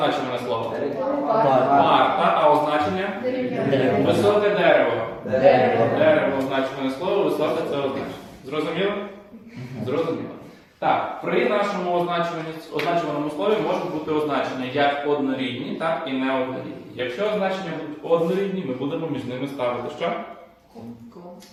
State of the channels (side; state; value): both; identical; correlation 1.00